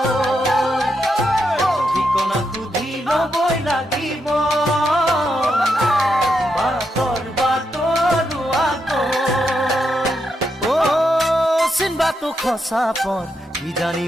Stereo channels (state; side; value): normal; both; correlation 0.82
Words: ঠিকনা সুধি ল'বই লাগিব বাটৰ বাটৰুৱাকৈ চিনবাটো খচা পৰ কিজানি